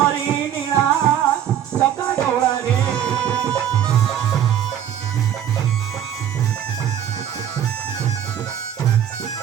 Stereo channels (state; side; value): quieter; left; 10.0 dB